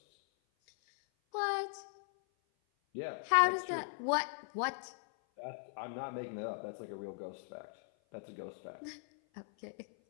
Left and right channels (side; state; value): right; silent; 52 dB below the other